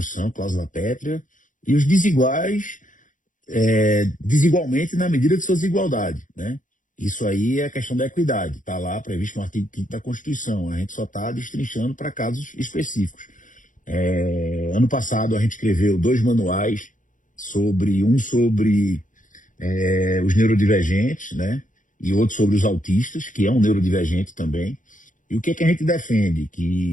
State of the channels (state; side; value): late; right; 0.38 ms